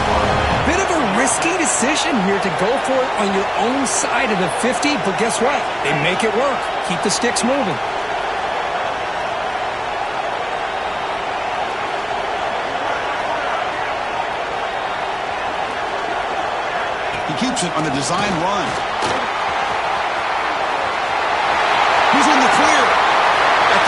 Bit of a risky decision here to go for it on your own side of the 50, but guess what? They make it work. Keep the sticks moving. He keeps it on the design run. He's in the clear at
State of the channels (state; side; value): identical; both; correlation 1.00